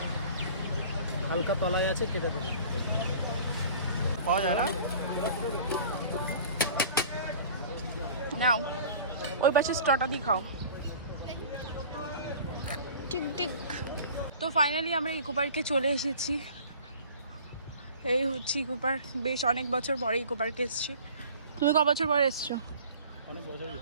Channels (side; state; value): both; inverted; correlation -0.45